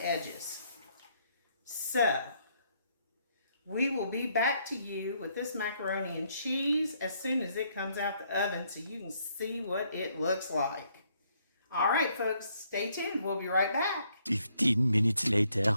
edges. So, we will be back to you with this macaroni and cheese as soon as it comes out the oven so you can see what it looks like. All right, folks, stay tuned. We'll be right back. 15 minutes later.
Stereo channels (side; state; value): both; inverted; correlation -0.71